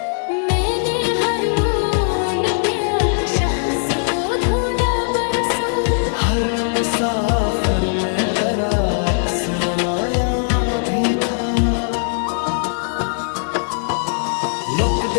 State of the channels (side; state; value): right; silent; 66 dB below the other